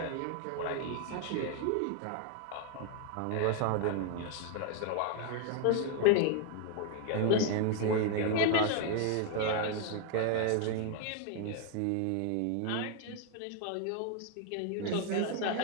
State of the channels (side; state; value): both; different; correlation 0.00